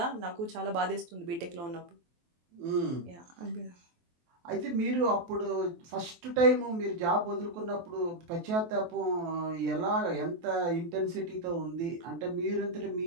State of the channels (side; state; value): left; late; 23 ms